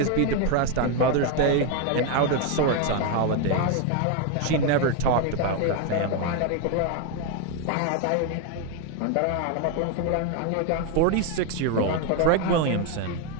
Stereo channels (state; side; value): different; both; correlation 0.01